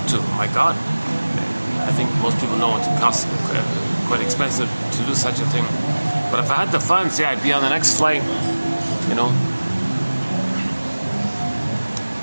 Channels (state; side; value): inverted; both; correlation -1.00